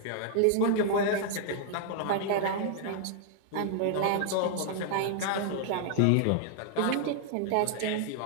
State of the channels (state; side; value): different; both; correlation -0.01